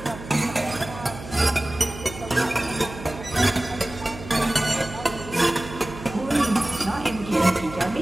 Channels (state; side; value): noise; right; hum, 13 dB below the sound